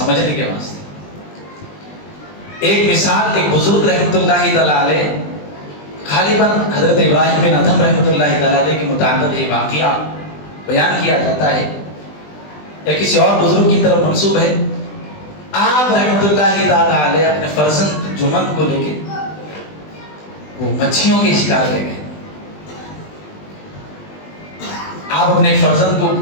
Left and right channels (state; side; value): late; right; 20 ms